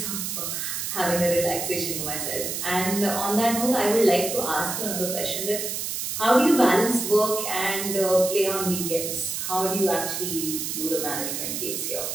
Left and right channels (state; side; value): noise; right; hiss, 3 dB below the sound